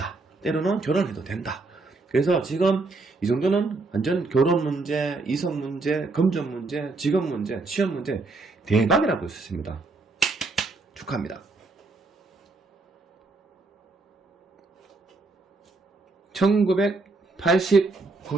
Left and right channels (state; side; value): quieter; left; 3.6 dB